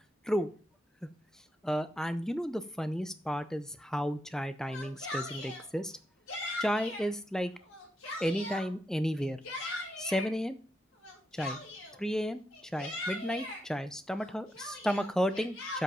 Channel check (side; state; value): both; normal; correlation 0.84